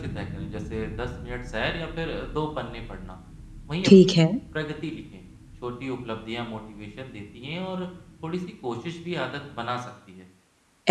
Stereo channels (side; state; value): both; identical; correlation 1.00